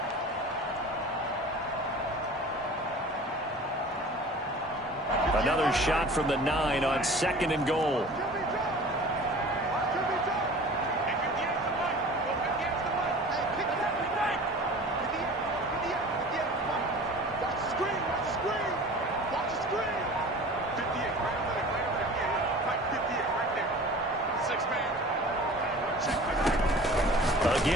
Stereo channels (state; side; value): normal; both; correlation 0.41